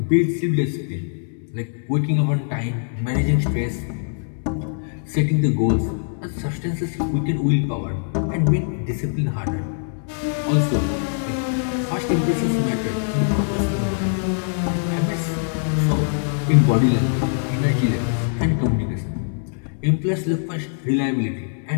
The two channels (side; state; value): right; silent; digital silence